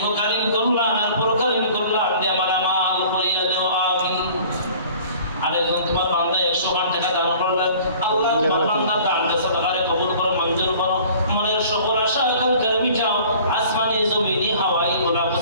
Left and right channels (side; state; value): both; inverted; correlation -0.49